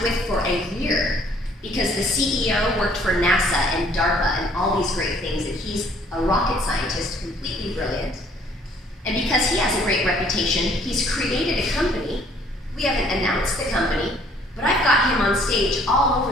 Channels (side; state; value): both; normal; correlation 0.60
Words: with for a year, because the CEO worked for NASA and DARPA and all these great things, and he's a rocket scientist, completely brilliant. And because he has a great reputation, he's created a company. We haven't announced the company, but I've got him on stage all